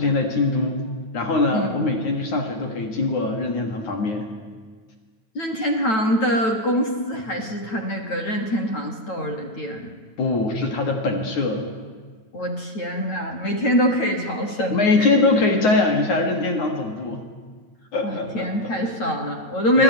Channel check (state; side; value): late; right; 9.1 ms